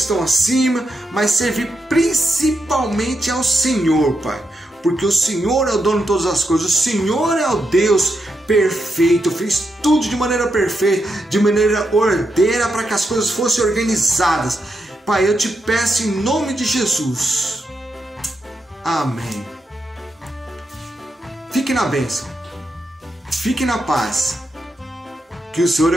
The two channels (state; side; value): normal; both; correlation 0.84